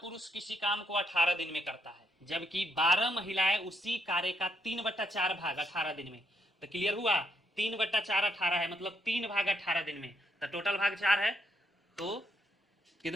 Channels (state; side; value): normal; both; correlation 0.77